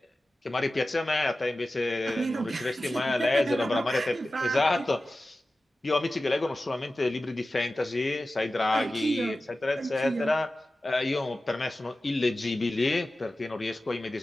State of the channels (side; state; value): both; normal; correlation 0.95